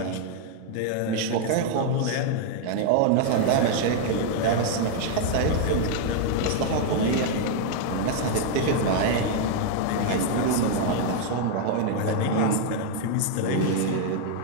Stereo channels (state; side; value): different; both; correlation 0.00